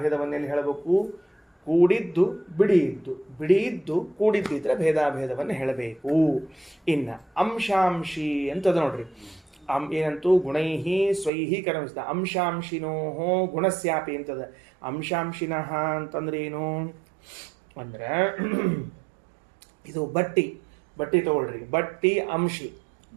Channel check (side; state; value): left; drops out; at 11.3 s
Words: ಹೇಳಬೇಕು? ಕೂಡಿದ್ದು ಬಿಡಿಯಿದ್ದು ಕೂಡಿದ್ದಿದ್ರೆ ಭೇದಾಭೇದವನ್ನು ಹೇಳಬೇಕು. ಇನ್ನು ಅಂಶಾಂಶಿ ಅಂತದ ನೋಡ್ರಿ. ಏನಂತೂ ಗುಣೈಹಿ ಸ್ವೈಹಿ ಕರ್ಮಿಸಿದ ಅಂಶಾಂಶಿನೋ ಗುಣಸ್ಯಾಪಿ ಅಂತದ. ಅಂಶಾಂಶಿನಃ ಅಂತಂದ್ರೆ ಏನು ಅಂದ್ರೆ ಇದು ಬಟ್ಟಿ ತಗೊಳ್ರಿ. ಬಟ್ಟಿ ಅಂಶಿ,